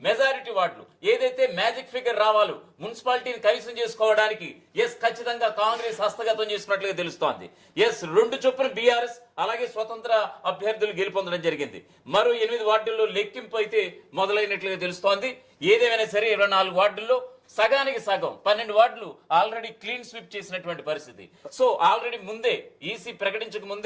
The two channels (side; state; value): both; identical; correlation 1.00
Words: మెజారిటీ వార్డులు ఏదైతే మ్యాజిక్ ఫిగర్ రావాలో మున్సిపాలిటీని కైవసం చేసుకోవడానికి ఖచ్చితంగా కాంగ్రెస్ హస్తగతం చేసుకున్నట్లుగా తెలుస్తోంది. 2 చొప్పున బీఆర్ఎస్ అలాగే స్వతంత్ర అభ్యర్థులు గెలుపొందడం జరిగింది. మరో 8 వార్డుల్లో లెక్కింపు అయితే మొదలైనట్లుగా తెలుస్తోంది. ఏదేమైనా సరే 24 వార్డుల్లో సగానికి సగం 12 వార్డులు ఆల్రెడీ క్లీన్ స్వీప్ చేసినటువంటి పరిస్థితి. సో ఆల్రెడీ ముందే ఈసీ ప్రకటించక